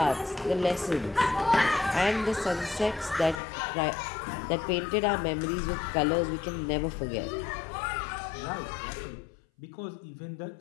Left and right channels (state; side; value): drops out; right; at 3.4 s